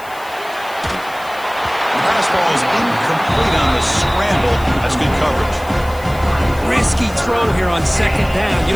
The pass ball is incomplete on the scramble. That's good coverage. Risky throw here on 2nd down. You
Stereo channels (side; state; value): left; noise; hiss, 20 dB below the sound